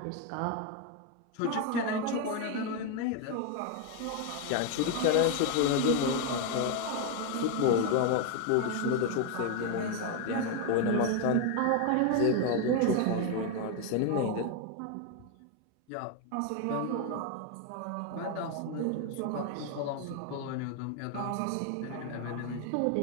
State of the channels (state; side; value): different; both; correlation 0.01